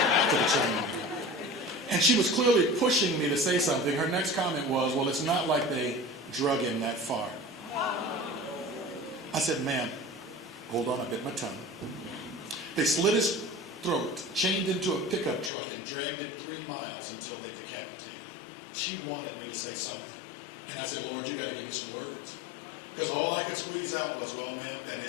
to the training room. And she was clearly pushing me to say something. Her next comment was, well, it's not like they drug him that far. I said, ma'am, hold on, I bit my tongue. They slit his throat, chained into a pickup truck, and dragged him 3 miles until they decapitated him. She wanted me to say something. And I said, Lord, you got to give me some words. Because all I could squeeze out was, well, ma'am, that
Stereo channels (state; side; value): drops out; right; at 15.5 s